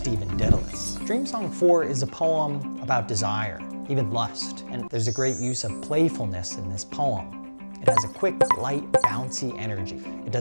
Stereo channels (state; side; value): inverted; both; correlation -1.00